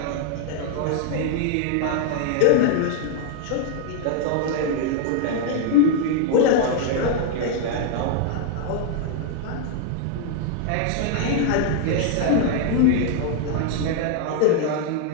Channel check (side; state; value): both; different; correlation 0.00